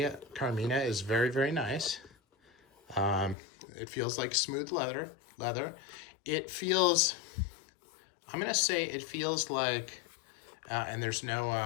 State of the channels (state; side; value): drops out; right; at 3.4 s